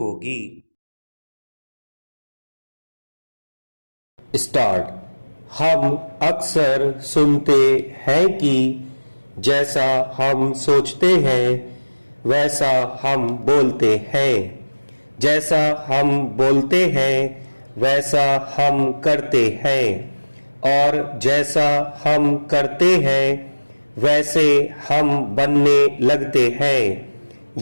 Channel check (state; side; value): inverted; both; correlation -1.00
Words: स्टार्ट। हम अक्सर सुनते हैं कि जैसा हम सोचते हैं वैसा हम बोलते हैं, जैसा हम बोलते हैं वैसा हम करते हैं और जैसा हम करते हैं वैसे हम बनने लगते हैं।